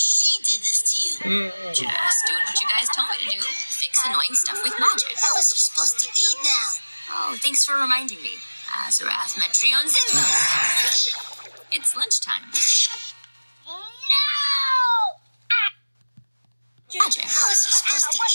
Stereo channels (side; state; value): both; inverted; correlation -1.00